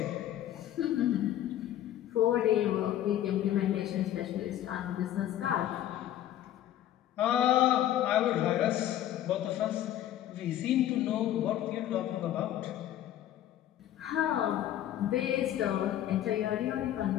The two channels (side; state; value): right; quieter; 12.2 dB